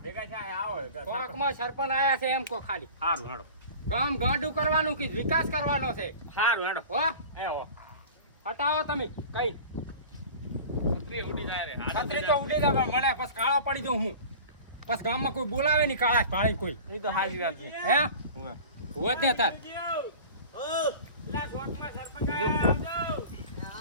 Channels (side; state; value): both; inverted; correlation -0.38